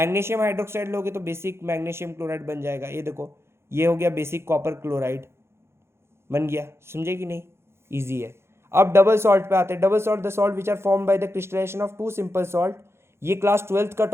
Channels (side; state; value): left; late; 0.12 ms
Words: hydroxide लोगे तो बेसिक मैग्नीशियम क्लोराइड बन जाएगा। ये देखो ये हो गया बेसिक कॉपर क्लोराइड बन गया, समझे कि नहीं? इजी है। अब डबल सॉल्ट पे आते हैं। Double salt, the salt which are form by the crystallization of 2 simple salt. ये क्लास 12th का